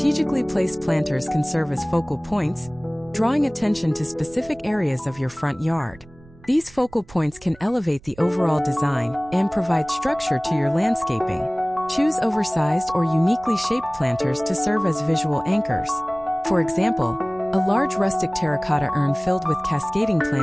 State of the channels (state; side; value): noise; right; rumble, 23 dB below the sound